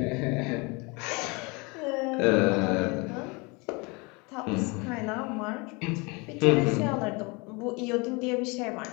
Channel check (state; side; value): quieter; right; 28.2 dB